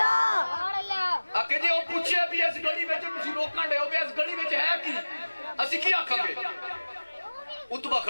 آکھے جی وہ پوچھے بھی اس گڑی بچ تسی روکاں ڈے ہو بھی اس گڑی بچ ہے کی اسی کی آکھاں گے اتبا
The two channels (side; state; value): both; inverted; correlation -1.00